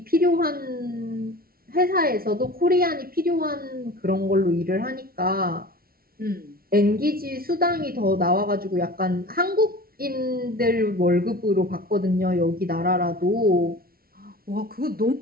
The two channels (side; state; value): left; late; 0.43 ms